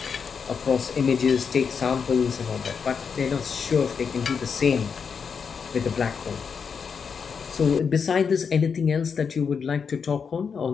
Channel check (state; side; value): quieter; right; 6.2 dB